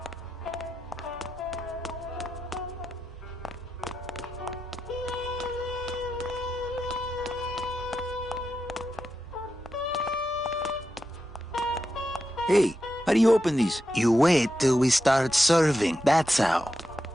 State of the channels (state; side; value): normal; both; correlation 0.88